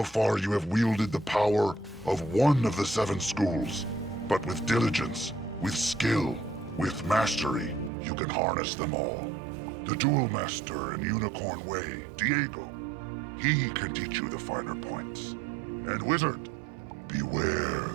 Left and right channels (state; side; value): drops out; left; at 7.9 s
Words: far you have wielded the power of one of the 7 schools, but with diligence, with skill, with mastery, you can harness them all. The Duel Master in Unicorn Way, Diego, he can teach you the finer points. And wizard, beware